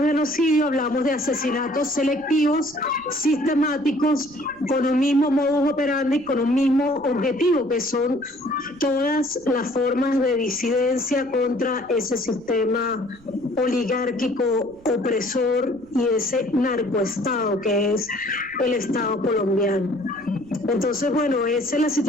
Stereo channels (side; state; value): right; noise; rumble, 27 dB below the sound